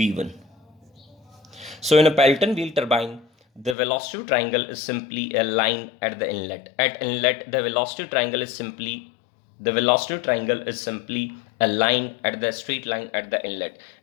So in a Pelton wheel turbine, the velocity triangle is simply a line at the inlet. At inlet, the velocity triangle is simply a line at the straight line at the inlet.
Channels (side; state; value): right; drops out; at 3.8 s